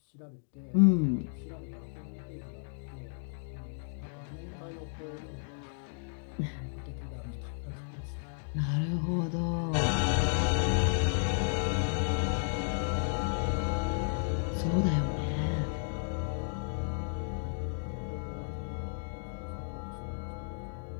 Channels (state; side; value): silent; right; digital silence